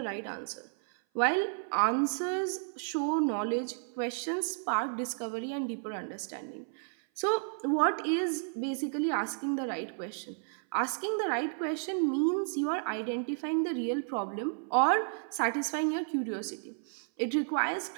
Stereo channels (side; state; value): left; silent; 56 dB below the other